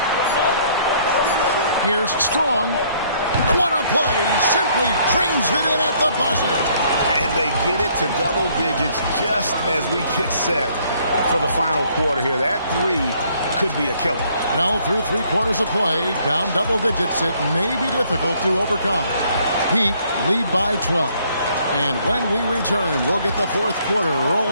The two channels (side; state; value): both; inverted; correlation -0.64